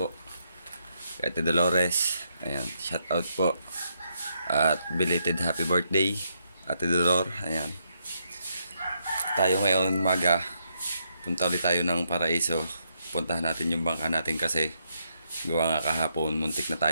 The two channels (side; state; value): both; inverted; correlation -0.77